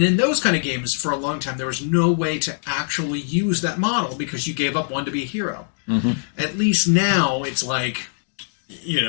in those kind of games, for a long time, there was no way to actually use that model because you gave up one to be a hero. At least now, it's like,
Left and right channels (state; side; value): silent; right; digital silence